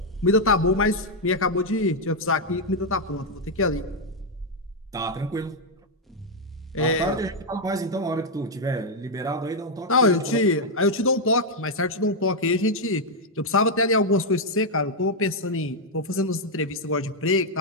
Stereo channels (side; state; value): both; normal; correlation 0.00